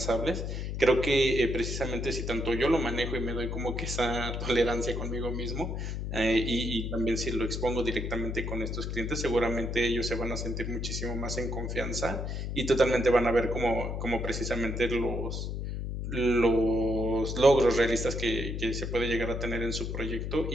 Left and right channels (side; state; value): left; noise; hum, 4 dB below the sound